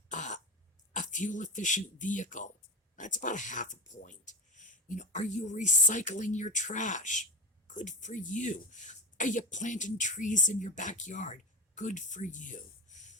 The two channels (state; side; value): normal; both; correlation 0.20